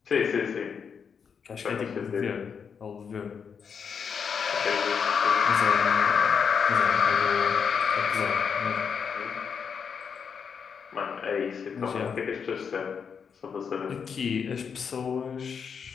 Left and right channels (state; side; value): quieter; right; 6.6 dB